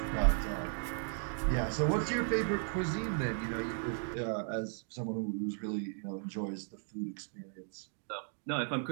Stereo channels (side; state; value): left; silent; 54 dB below the other